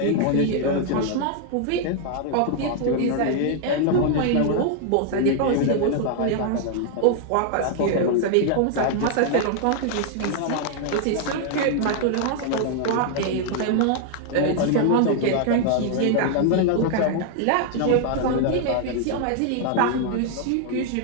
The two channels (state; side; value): different; both; correlation 0.00